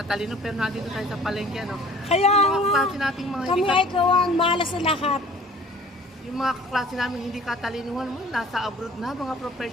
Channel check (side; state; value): both; normal; correlation 0.49